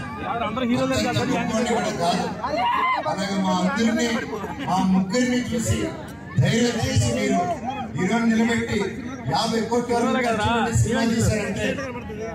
కాదు. అలాగే మా ముగ్గురిని చూసి ధైర్యం చేసి మీరు హీరోని నిలబెట్టి 50 కోట్ల సినిమా చేశారంటే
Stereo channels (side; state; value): both; identical; correlation 1.00